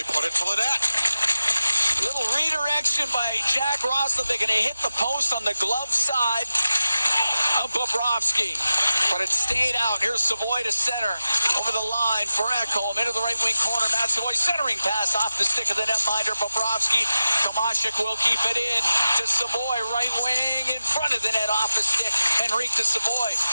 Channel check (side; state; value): both; inverted; correlation -0.93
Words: put it to the net. Little redirection by Jack Roslovic, and it hit the post on the glove side of Bobrovsky. But it stayed out. Here's Savoy to center. Over the line for Ekholm. Into the right wing corner. Matt Savoy centering pass off the stick of the netminder. Bobrovsky. Tomashik will keep it in to Savoy. Right wing in front of the net off the stick. Henrique to Savoy.